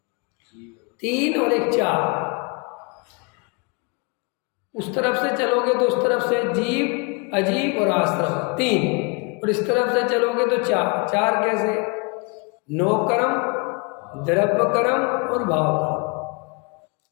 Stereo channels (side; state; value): right; quieter; 31.6 dB